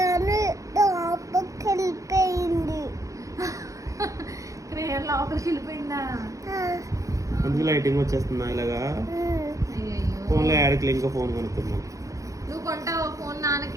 వెళ్ళిపోయింది. క్రేయర్ లోపలికి వెళ్ళిపోయిందా? అందుకు లైటింగ్ వచ్చేస్తుందా ఇలాగా? అయ్యయ్యో. ఫోన్లో యాడికి ఇంకో ఫోన్ కొనుక్కుందాం. నువ్వు కొంటావా ఫోన్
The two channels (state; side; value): late; left; 0.16 ms